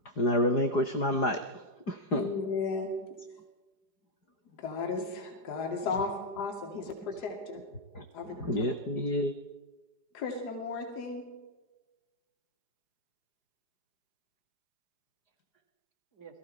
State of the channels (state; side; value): late; right; 4.8 ms